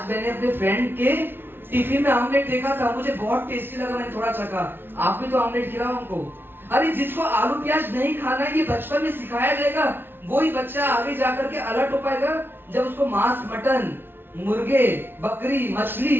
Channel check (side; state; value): left; late; 0.10 ms